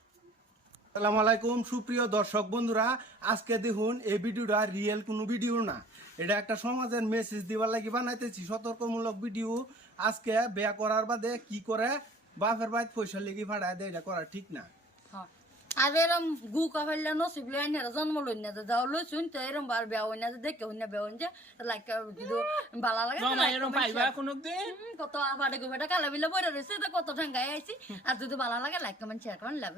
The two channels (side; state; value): both; normal; correlation 0.52